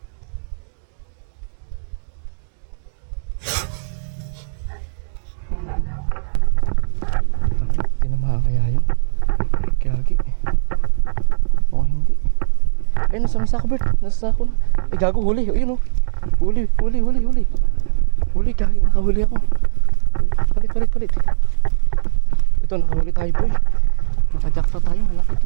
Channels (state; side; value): silent; left; digital silence